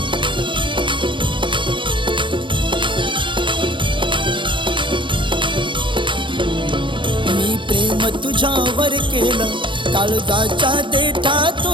तुझ्यावर केलं काळजाच्या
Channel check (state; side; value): late; left; 0.24 ms